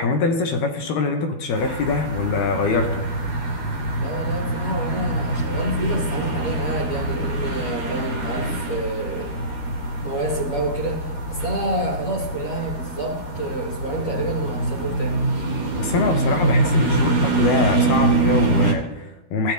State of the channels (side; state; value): right; late; 13 ms